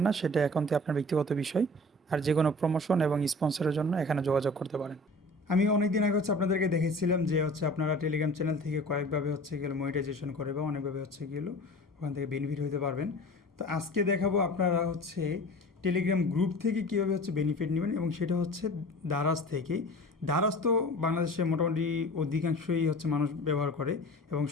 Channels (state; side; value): normal; both; correlation 0.41